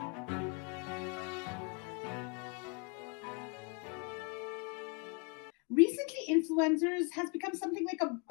Recently, influencers has become something like a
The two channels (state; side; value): quieter; right; 33.1 dB